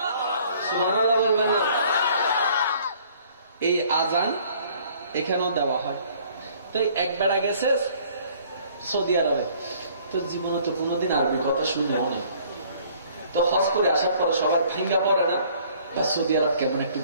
এই আজান এখানেও দেওয়া হয়। তো এক বেড়া গেছে সৌদি আরবে, তো জীবনে তো কোনোদিন আরবি কথা শুনলেও না। তো হজ করে আসার পর সবার ভাঙ্গা পড়ে না, বা সৌদি আরব কেমন একটু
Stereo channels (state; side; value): inverted; both; correlation -0.57